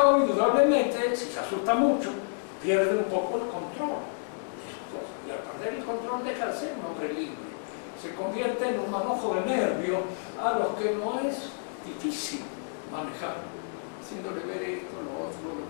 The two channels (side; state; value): right; silent; digital silence